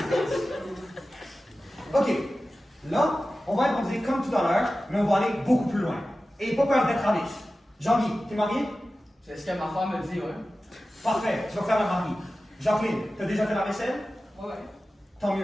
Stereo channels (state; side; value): normal; both; correlation 0.95